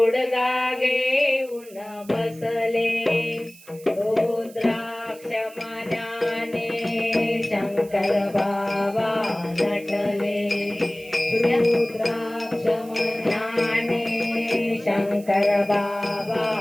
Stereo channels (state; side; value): noise; right; hiss, 22 dB below the sound